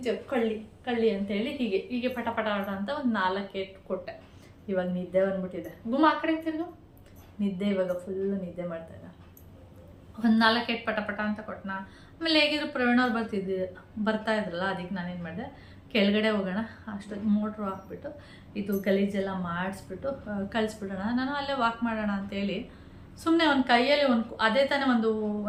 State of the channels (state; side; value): identical; both; correlation 1.00